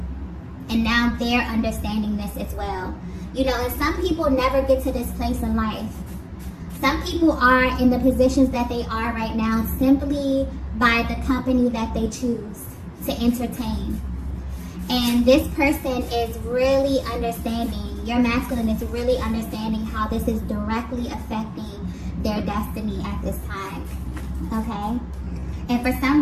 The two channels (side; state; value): both; identical; correlation 1.00